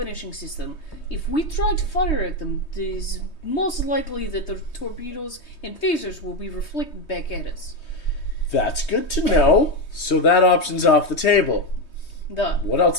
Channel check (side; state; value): right; late; 3.2 ms